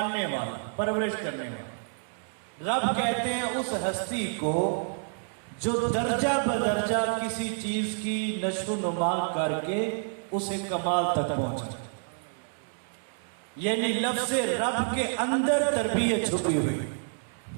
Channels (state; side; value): silent; left; digital silence